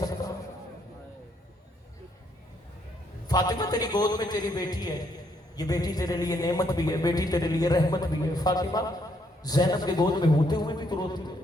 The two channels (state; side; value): normal; both; correlation 0.72